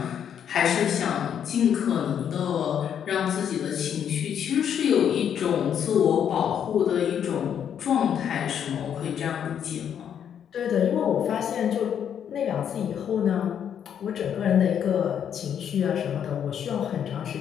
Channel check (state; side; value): quieter; right; 8.7 dB